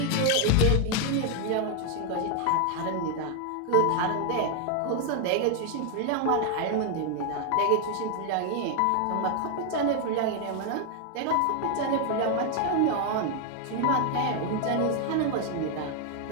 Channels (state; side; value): different; both; correlation 0.00